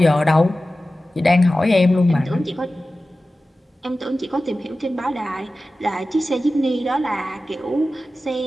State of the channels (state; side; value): normal; both; correlation 0.95